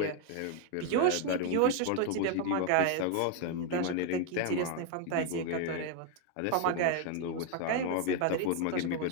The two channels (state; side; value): different; both; correlation 0.01